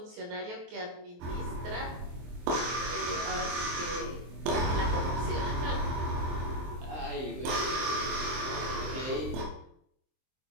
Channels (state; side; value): late; left; 23 ms